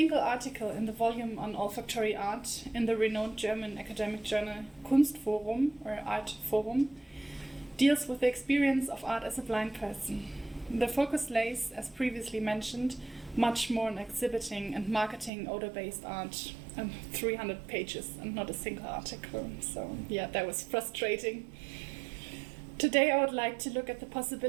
article in the volume on olfactory art in the renowned German academic journal Kunstforum, or Art Forum, deals with the experience of art as a blind person. The focus lays, as previously mentioned, much more on exhibiting and marketing odor-based art, and 300 pages and not a single article. So yeah, that was frustrating. Today I would like to look at the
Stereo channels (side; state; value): left; drops out; at 15.3 s